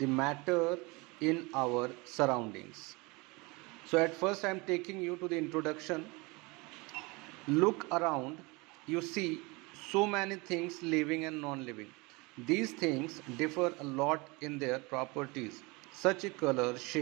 matter in our surroundings. So, at first, I am taking you to the introduction. Look around, you see so many things living and non living. These things differ a lot in their properties, such as color,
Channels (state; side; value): quieter; left; 25.9 dB